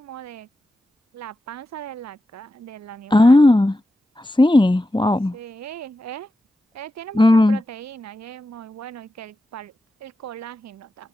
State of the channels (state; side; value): normal; both; correlation 0.91